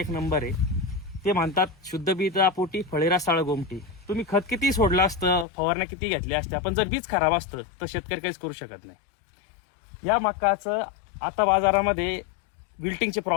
नंबर आहे. ते म्हणतात शुद्ध बीजा पोटी फळेरा साळ गोमटी. तुम्ही खत किती सोडलं असतं, फवारण्या किती घेतल्या असत्या, पण जर बीज खराब असतं तर शेतकरी काहीच करू शकत नाही. या मक्काचं आता बाजारामध्ये विल्टिंगचे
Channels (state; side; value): drops out; right; at 5.5 s